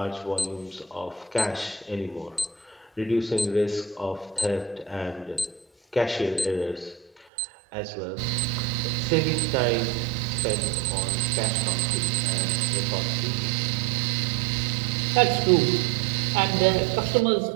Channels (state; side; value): drops out; left; at 7.2 s